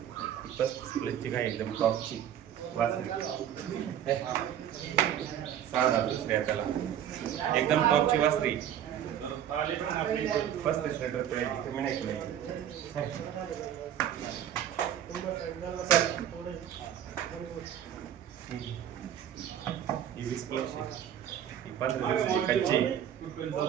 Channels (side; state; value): left; quieter; 10.1 dB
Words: 35 गाय एकदम टॉपची वासरी. 6 दुसऱ्या त्याला एकदम टॉपची वासरी. 35 लिटर पिळायची कमी नाही ही 20 प्लस 15 दिवसाची कच्ची.